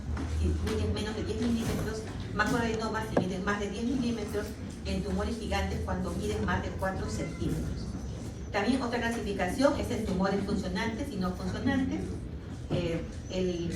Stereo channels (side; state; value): both; identical; correlation 1.00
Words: si miden menos de 10 milímetros, macroadenomas si miden más de 10 milímetros, y en tumores gigantes cuando miden más de 4 centímetros. También otra clasificación es en tumores funcionantes y no funcionantes. El